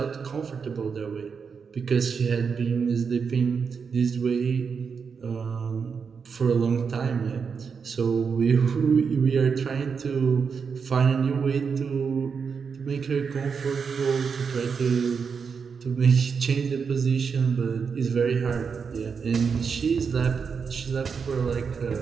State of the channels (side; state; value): left; quieter; 5.9 dB